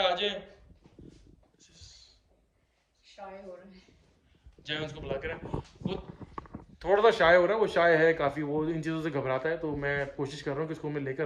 आ जाए। जय उसको बुला कर, वो थोड़ा सा शाय हो रहा है, वो शाय है काफ़ी, वो इन चीज़ों से घबराता है। तो मैं कोशिश कर रहा हूँ कि इसको मैं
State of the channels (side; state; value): both; identical; correlation 1.00